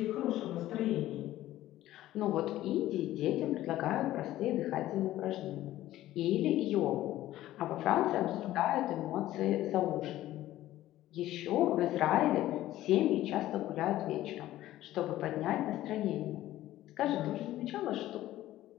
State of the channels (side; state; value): right; quieter; 14.6 dB